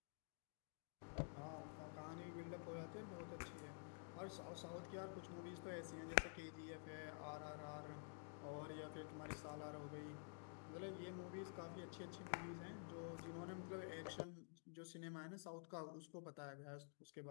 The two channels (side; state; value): right; silent; digital silence